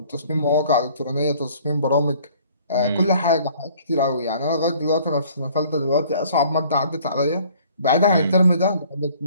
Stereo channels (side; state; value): both; inverted; correlation -0.55